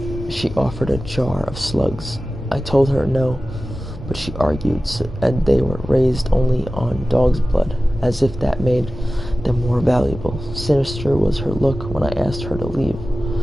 she offered a jar of slugs. I told her no, but she argued, and they were raised only on dog's blood, as if that made them more valuable. Sinister was her look when I asked her to leave.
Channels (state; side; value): normal; both; correlation 0.96